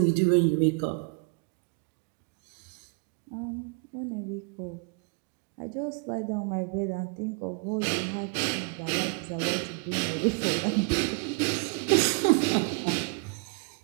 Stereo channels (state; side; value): quieter; left; 34.3 dB